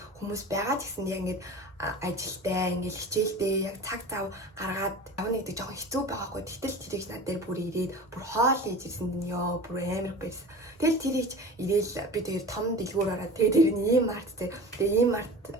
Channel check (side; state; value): both; normal; correlation 0.36